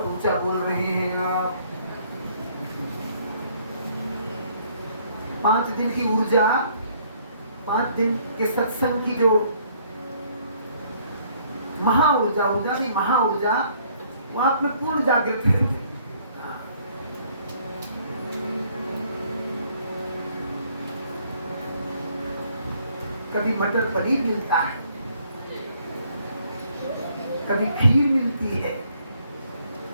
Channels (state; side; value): inverted; both; correlation -0.63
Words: ऊंचा बोल रहे हैं आप। 5 दिन की ऊर्जा, 5 दिन के सत्संग की जो महाऊर्जा, ऊर्जा की महाऊर्जा, वो आप में पूर्ण जागृत है। कभी मटर पनीर मिलता है, कभी खीर मिलती है,